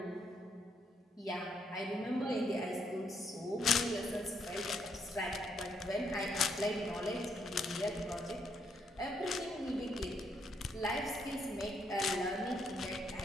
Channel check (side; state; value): both; normal; correlation 0.74